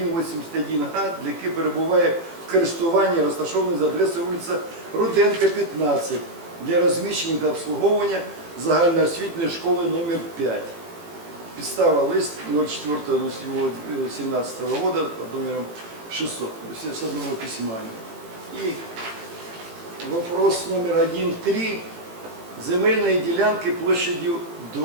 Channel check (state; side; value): late; left; 18 ms